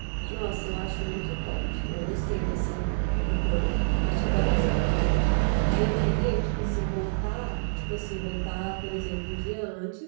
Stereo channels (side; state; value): left; silent; digital silence